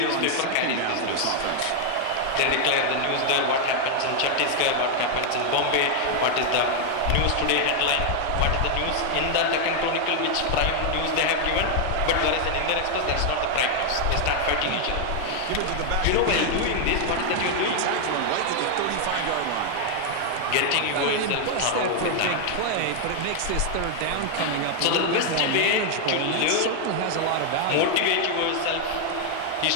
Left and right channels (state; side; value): different; both; correlation 0.00